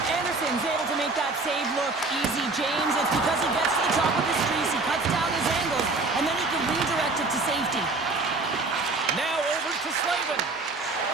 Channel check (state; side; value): quieter; left; 3.5 dB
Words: Anderson's able to make that save look easy, James. It's because he gets to the top of his crease, he cuts down his angles, and then he can redirect it to safety. Now over to Slavin.